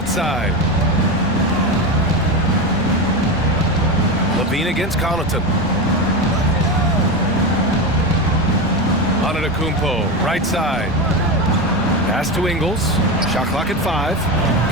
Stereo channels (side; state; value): both; normal; correlation 0.18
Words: LaVine against Connaughton. Antetokounmpo, right side. Pass to Ingles. Shot clock at 5.